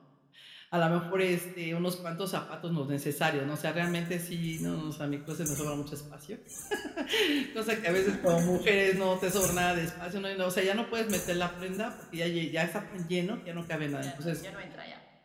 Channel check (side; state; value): both; identical; correlation 1.00